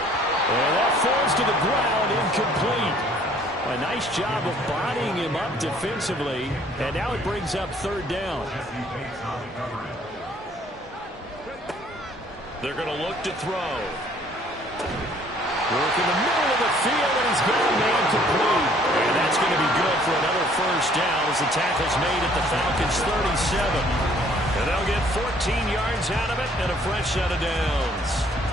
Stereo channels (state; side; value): normal; both; correlation 0.59